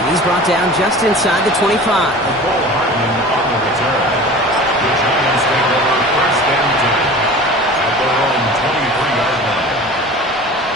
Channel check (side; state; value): both; normal; correlation 0.39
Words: He's brought down just inside the 25. Cole Hardman on the return. The Giants take over 1st and 10 at their own 23-yard line.